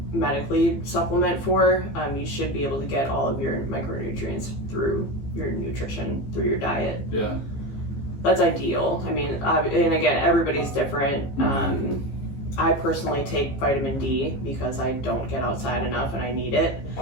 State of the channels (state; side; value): late; right; 15 ms